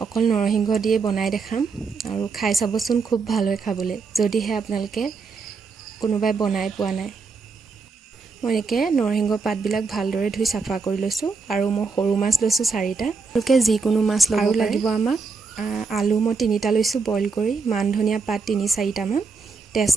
অকল নৰসিংহ দিয়ে বনাই দেখাম। আৰু খাই চাবচোন, খুব ভাল হয় খাবলৈ, যদিহে আপোনালোকে কোনোবাই বনাই পোৱা নাই। মই এনেকৈ নৰসিংহ পাতবিলাক ভালদৰে ধুই চাফা কৰি লৈছোঁ। আৰু মই সৰু মাছ লৈছোঁ 4টা। আপোনালোকে যিকোনো মাছ ল'ব পাৰে। আৰু লাগিব আমাক আলু মই 3টা লৈছোঁ বইল কৰি, মান ধনিয়া পাত 3-4টামান,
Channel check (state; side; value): quieter; left; 4.7 dB